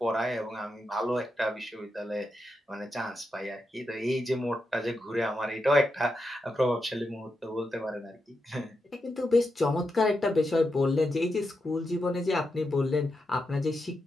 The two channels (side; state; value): both; normal; correlation 0.86